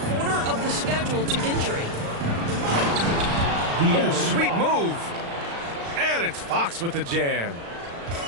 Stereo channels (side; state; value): left; late; 36 ms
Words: quarter of the schedule to injury. Oh, sweet move. And it's Fox with the jam.